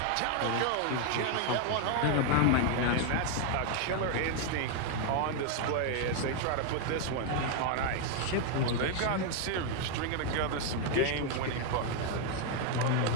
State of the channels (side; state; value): both; different; correlation 0.00